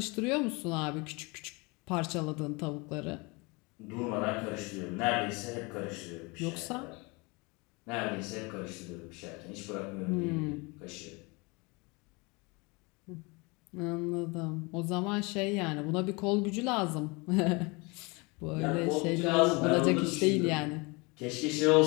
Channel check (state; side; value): quieter; right; 27.7 dB